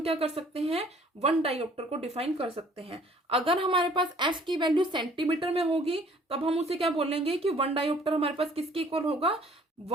क्या कर सकते हैं, 1 डायोप्टर को डिफाइन कर सकते हैं। अगर हमारे पास f की वैल्यू सेंटीमीटर में होगी तब हम उसे क्या बोलेंगे कि 1 डायोप्टर हमारे पास किसके इक्वल होगा,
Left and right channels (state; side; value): normal; both; correlation 0.56